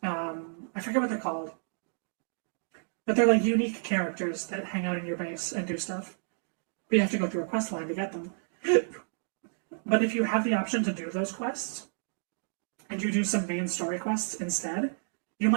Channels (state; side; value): silent; left; digital silence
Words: I forget what they're called. But they're like unique characters that hang out in your base and do stuff. But you have to go through a quest line to get them. But if you have the option to do those quests, and you do some main story quests instead, you